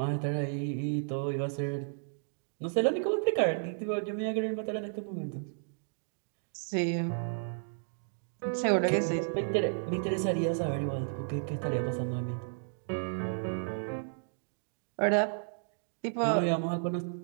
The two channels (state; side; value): silent; left; digital silence